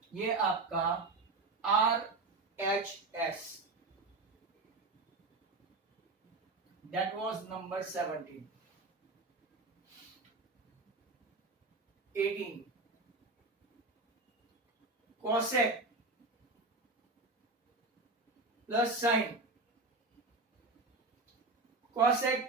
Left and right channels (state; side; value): quieter; left; 3.4 dB